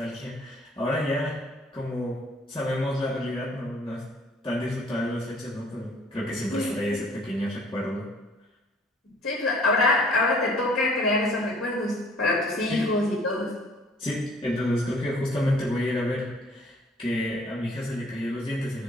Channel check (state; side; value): normal; both; correlation 0.56